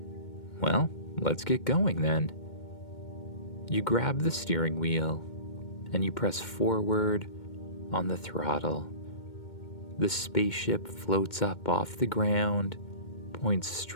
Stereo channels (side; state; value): right; late; 2.2 ms